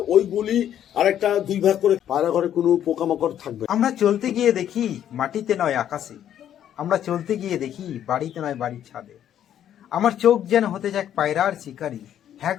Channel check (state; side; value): quieter; right; 10.4 dB